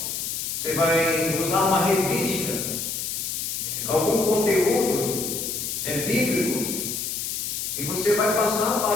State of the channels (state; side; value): noise; left; hiss, 3 dB below the sound